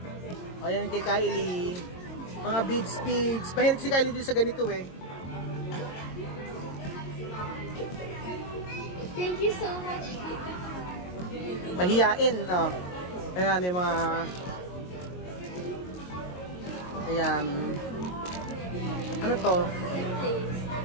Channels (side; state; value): right; late; 22 ms